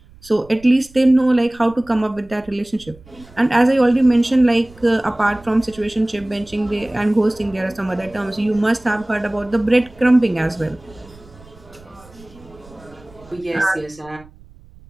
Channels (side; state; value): right; noise; rumble, 24 dB below the sound